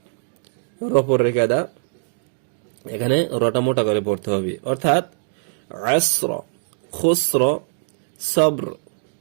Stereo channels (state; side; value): silent; left; digital silence